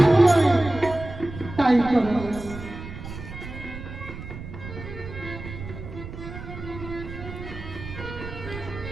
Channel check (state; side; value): noise; right; rumble, 11 dB below the sound